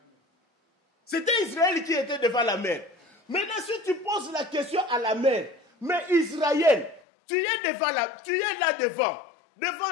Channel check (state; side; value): drops out; right; at 7.0 s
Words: C'était Israël qui était devant la mer. Maintenant, si tu poses la question à la mer, mais Israël, tu es là devant.